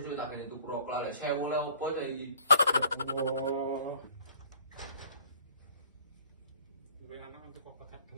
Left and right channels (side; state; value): both; inverted; correlation -0.54